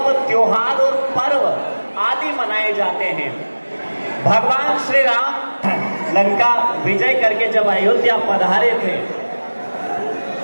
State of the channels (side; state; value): both; inverted; correlation -1.00